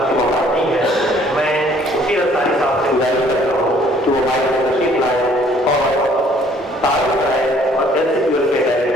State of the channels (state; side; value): normal; both; correlation 0.60